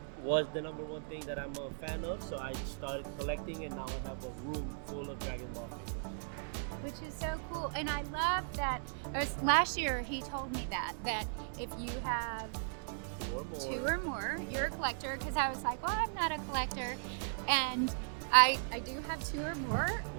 was the #1 thing that I'm a fan of. So I started collecting, and now I have a room full of Dragon Ball figures. Which is so cool. And I love that, last year he told me that if you have 2 or more, you're a collector, because I was like, well, I'm not a collector. And I do have 2 or more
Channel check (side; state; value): left; silent; digital silence